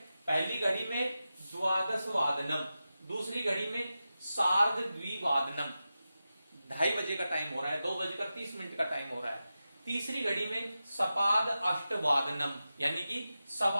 पहली घड़ी में द्वादश वादनम, दूसरी घड़ी में सार्ध द्विवादनम, 2:30 बजे का टाइम हो रहा है, 2:30 का टाइम हो रहा है। तीसरी घड़ी में सपाद अष्टवादनम, यानी कि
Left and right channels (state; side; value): inverted; both; correlation -0.92